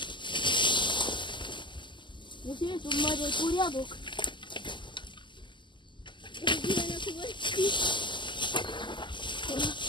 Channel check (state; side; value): late; right; 0.23 ms